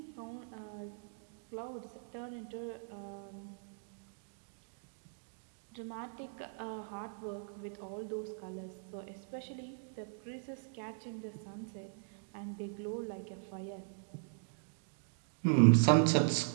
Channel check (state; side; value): silent; left; digital silence